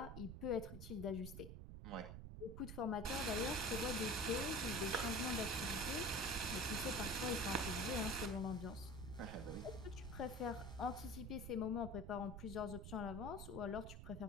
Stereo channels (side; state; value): right; noise; rumble, 8 dB below the sound